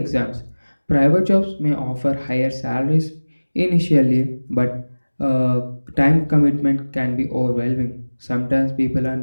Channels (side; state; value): both; inverted; correlation -1.00